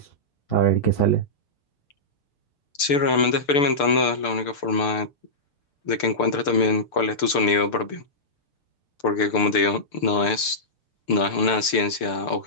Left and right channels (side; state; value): right; late; 6.8 ms